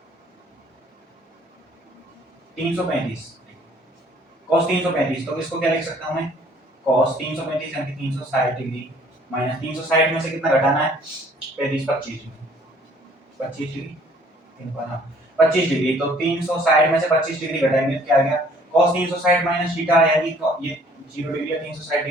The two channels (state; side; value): normal; both; correlation 0.58